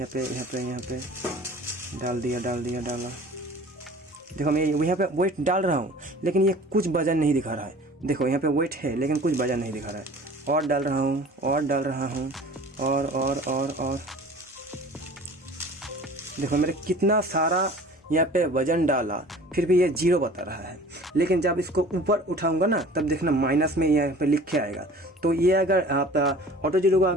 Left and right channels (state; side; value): normal; both; correlation 0.44